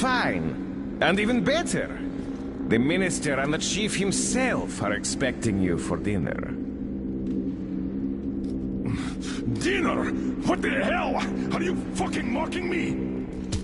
And even better. The minister and the chief himself are expecting you for dinner. Dinner? What the hell? Are you fucking mocking me?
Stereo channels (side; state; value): both; identical; correlation 1.00